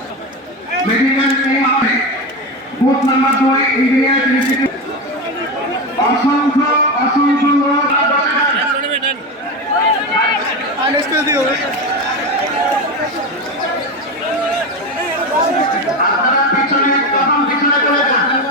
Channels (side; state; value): both; normal; correlation 0.19